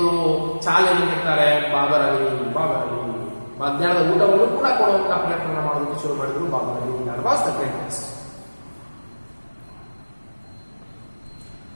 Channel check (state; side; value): inverted; both; correlation -1.00